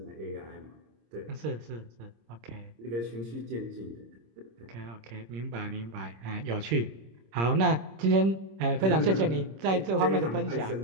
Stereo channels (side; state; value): left; late; 26 ms